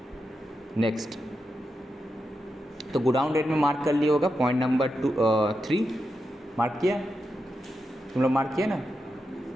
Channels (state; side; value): normal; both; correlation 0.87